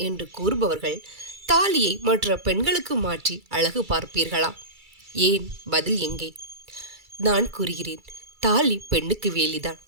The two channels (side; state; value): left; late; 2.3 ms